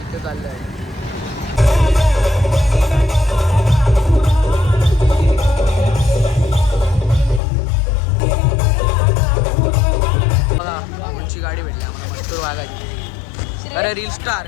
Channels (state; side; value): drops out; right; at 7.4 s